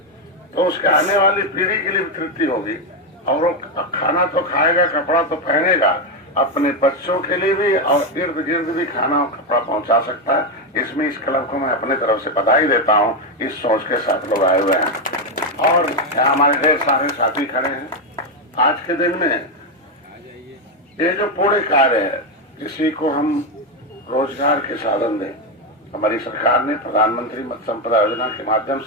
तो उसके आने वाली पीढ़ी के लिए तृप्ति होगी और वो खाना तो खाएगा, कपड़ा तो पहनेगा, अपने बच्चों के लिए भी और इर्द गिर्द भी खाना और कपड़ा पहुंचा सकता है। इसमें इस क्लब को मैं अपने तरफ से बधाई देता हूं। इस सोच के साथ लोग आए हुए हैं और यहाँ हमारे ढेर सारे साथी खड़े हैं। आज के दिन में ये जो पूरे कार्य है, किसी को हम रोजगार के साधन दें, हमारी सरकार ने प्रधानमंत्री मत्स्य संपदा योजना के माध्यम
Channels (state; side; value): normal; both; correlation 0.07